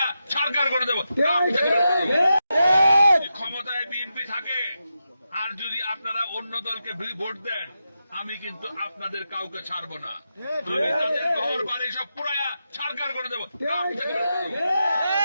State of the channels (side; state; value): both; inverted; correlation -0.88